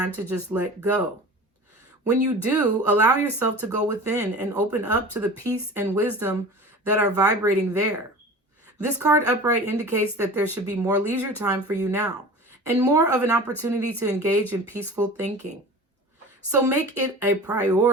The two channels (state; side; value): normal; both; correlation 0.37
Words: to just let go. When you do, allow yourself to go within and open up to the peace and wisdom that are vibrating there. This card upright indicates that there should be more leisure time for you now and more of an opportunity to engage in peaceful thinking. So make it a